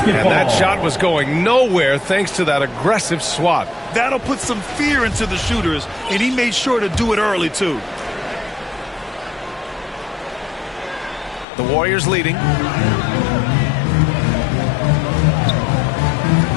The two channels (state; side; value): drops out; right; at 11.5 s